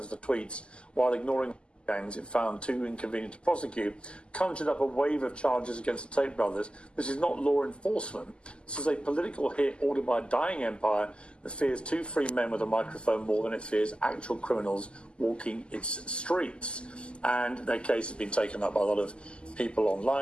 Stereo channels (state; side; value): late; right; 0.051 ms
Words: for tweets while ignoring gangs it found too inconvenient to prosecute, conjured up a wave of charges against the Tate brothers. This is not law enforcement. This is a political hit ordered by a dying empire that fears two free men with a microphone more than it fears actual criminals walking its streets. And their case has been taken up by a lot of people